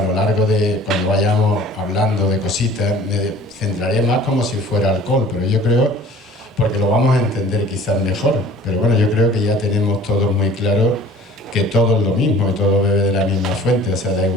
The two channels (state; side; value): normal; both; correlation 0.48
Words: lo largo de cuando vayamos hablando de cositas, me centraré más como si fuera alcohol, pero yo creo, porque lo vamos a entender quizás mejor, pero bueno, yo creo que ya tenemos todos muy claro que todo es lo mismo y todo bebe de la misma fuente, o sea, da